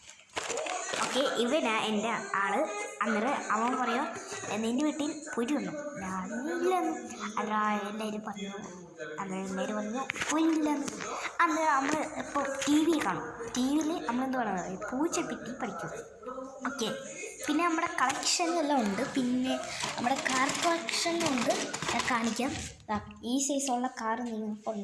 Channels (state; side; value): identical; both; correlation 1.00